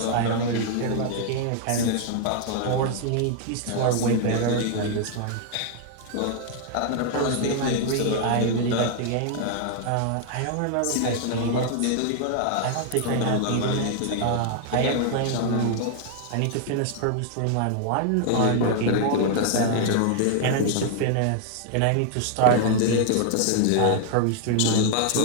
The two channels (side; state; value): both; different; correlation 0.00